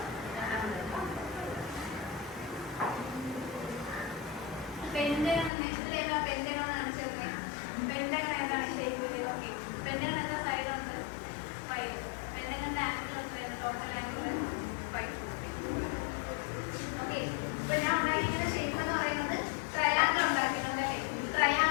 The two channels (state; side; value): drops out; right; at 5.5 s